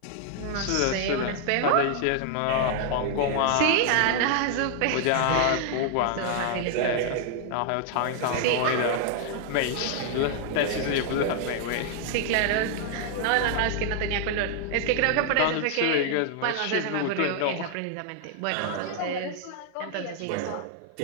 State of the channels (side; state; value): both; different; correlation 0.00